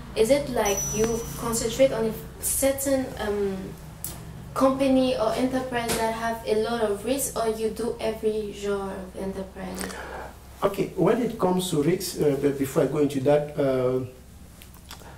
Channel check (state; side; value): identical; both; correlation 1.00